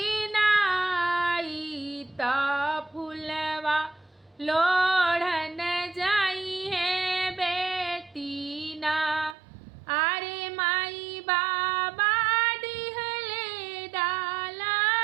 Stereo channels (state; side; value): drops out; left; at 9.3 s